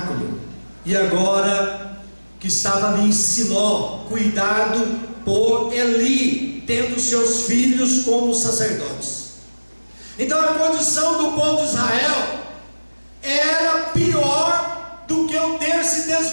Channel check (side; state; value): both; inverted; correlation -1.00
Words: E agora que estava ali em Siló, cuidado por Eli, tendo seus filhos como sacerdotes. Então a condição do povo de Israel era pior do que o ter se